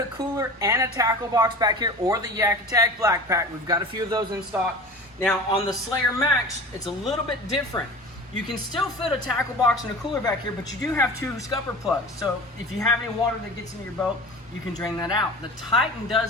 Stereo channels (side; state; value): both; normal; correlation 0.37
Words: cooler and a tackle box back here, or the Yak Attack Black Pack. We've got a few of those in stock. Now on the Slayer Max, it's a little bit different. You can still fit a tackle box and a cooler back here, but you do have two scupper plugs. So if you have any water that gets into your boat, you can drain that out. The Titan